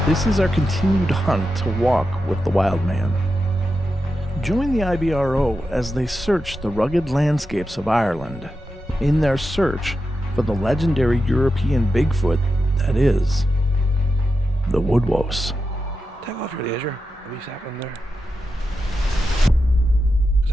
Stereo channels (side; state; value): both; normal; correlation 0.89